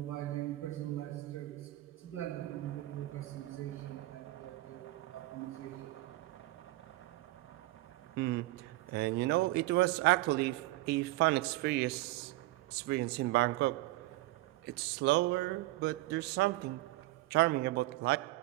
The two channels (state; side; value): quieter; left; 18.6 dB